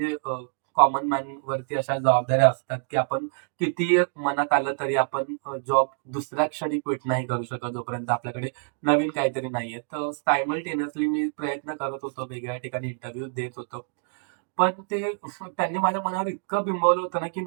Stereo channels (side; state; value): left; silent; 61 dB below the other